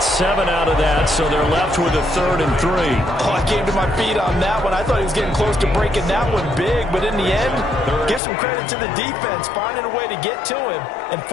7 out of that, so they're left with a 3rd and 3. Oh, I came to my feet on that one. I thought he was getting close to breaking that one big, but in the end, give some credit to the defense, finding a way to get to him and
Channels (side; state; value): right; drops out; at 8.2 s